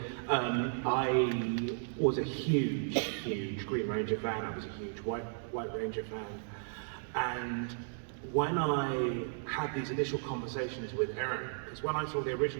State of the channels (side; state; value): left; silent; digital silence